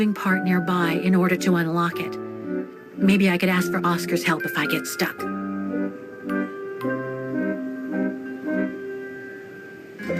part nearby in order to unlock it. Maybe I could ask for Oscar's help if I get stuck.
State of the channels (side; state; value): both; identical; correlation 1.00